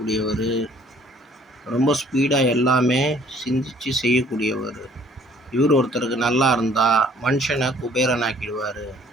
ரொம்ப ஸ்பீடாக எல்லாமே சிந்தித்து செய்யக்கூடியவர். இவர் ஒருத்தருக்கு நல்லா இருந்தால் மனுஷனை குபேரனாக்கிடுவார்.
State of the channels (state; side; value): normal; both; correlation 0.57